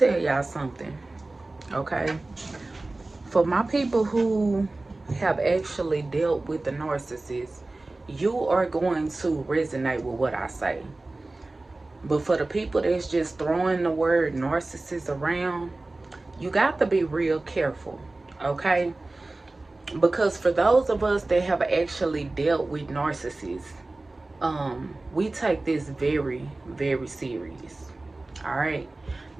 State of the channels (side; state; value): left; quieter; 3.0 dB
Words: y'all something, okay? For my people who have actually dealt with the narcissist, you are going to resonate with what I say. But for the people that's just throwing the word narcissist around, you got to be real careful, okay? Because for those of us that have actually dealt with narcissists, we take this very, very serious. All right.